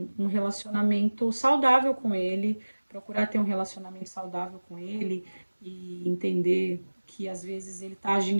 relacionamento saudável com ele, procurar ter um relacionamento saudável com ele e entender que às vezes ele está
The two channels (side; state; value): both; inverted; correlation -1.00